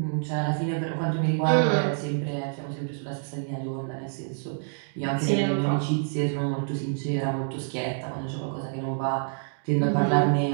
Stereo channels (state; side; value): silent; left; digital silence